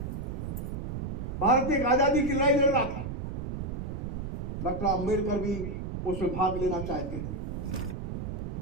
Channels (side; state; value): right; noise; rumble, 4 dB below the sound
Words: भारत एक आजादी की लड़ाई लड़ रहा था, डॉक्टर अंबेडकर भी उसमें भाग लेना चाहते थे।